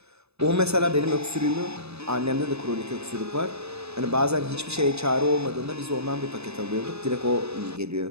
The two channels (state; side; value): late; left; 0.79 ms